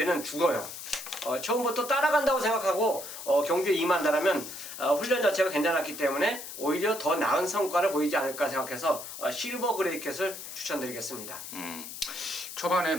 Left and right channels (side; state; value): left; noise; hiss, 10 dB below the sound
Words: 죽어요. 처음부터 따라간다고 생각하고 경주에 임한다라면 훈련 자체가 괜찮았기 때문에 오히려 더 나은 성과를 보이지 않을까 생각해서 실버 그레이 캣을 추천드리겠습니다. 초반에